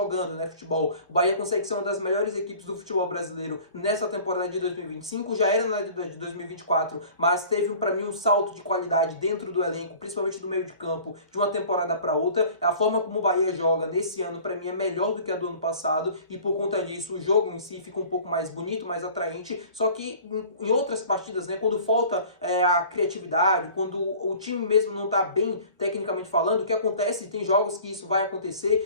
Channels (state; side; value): inverted; both; correlation -0.46